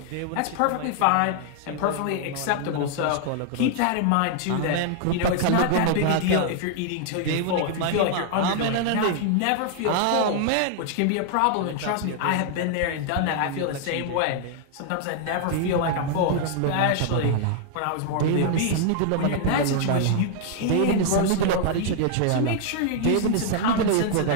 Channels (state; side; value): different; both; correlation 0.00